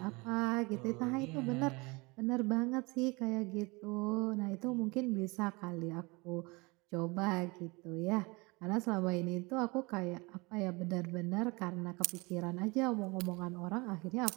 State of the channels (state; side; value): quieter; left; 26.2 dB